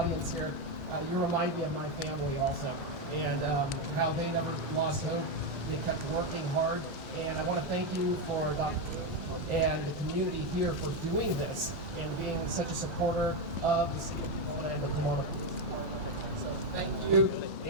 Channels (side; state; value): both; normal; correlation 0.07